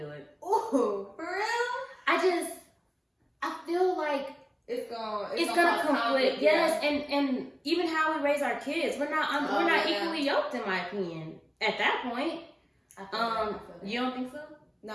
it. Ooh, for real? I feel like it's gonna conflict. Yes, and even how we raise our kids, we're not equally yoked, in my opinion. At that point, I feel that. You don't think so? No,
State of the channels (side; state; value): both; identical; correlation 1.00